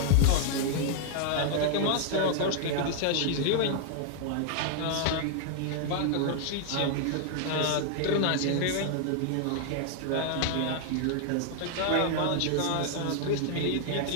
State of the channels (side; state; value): both; different; correlation 0.00